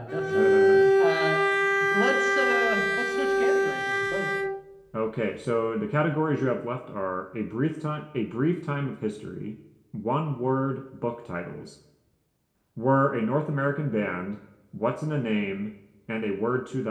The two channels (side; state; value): both; identical; correlation 1.00